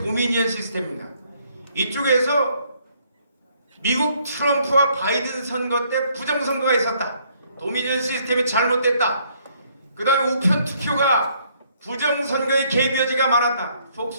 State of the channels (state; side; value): inverted; both; correlation -0.66